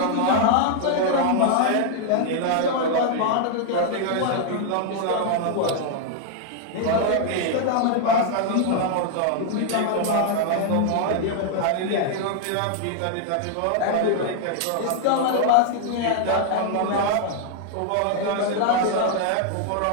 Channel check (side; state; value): both; different; correlation 0.00